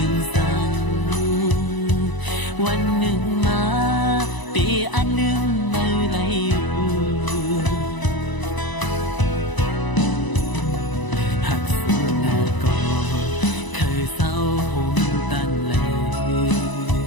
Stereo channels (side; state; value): right; late; 1.0 ms